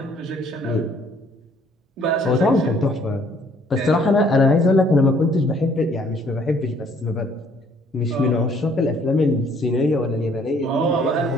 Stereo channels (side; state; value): both; normal; correlation 0.62